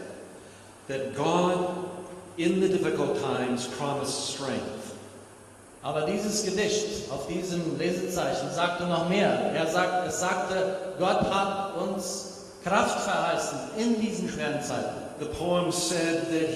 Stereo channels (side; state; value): both; identical; correlation 1.00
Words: that God, in the difficult times, promised strength. Aber dieses Gedicht auf diesem Lesezeichen sagte noch mehr. Es sagte, Gott hat uns Kraft verheißen in diesen schweren Zeiten. The poem said that